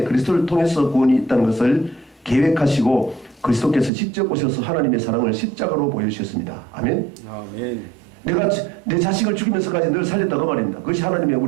그리스도를 통해서 구원이 있다는 것을 계획하시고 그리스도께서 직접 오셔서 하나님의 사랑을 십자가로 보여주셨습니다. 아멘. 아멘. 내가 내 자식을 죽이면서까지 늘 살렸다고 말입니다. 그것이 하나님의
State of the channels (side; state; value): left; drops out; at 3.9 s